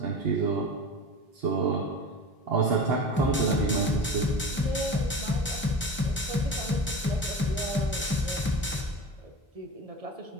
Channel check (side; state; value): both; normal; correlation 0.32